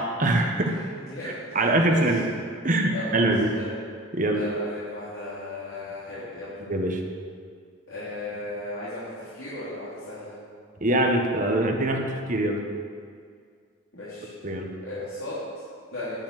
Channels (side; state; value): both; normal; correlation 0.36